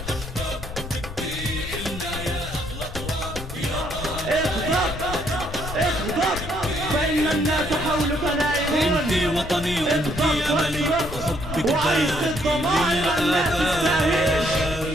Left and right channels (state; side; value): noise; left; rumble, 10 dB below the sound